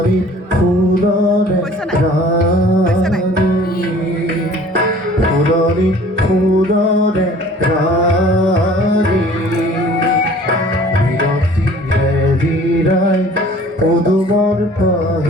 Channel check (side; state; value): both; normal; correlation 0.50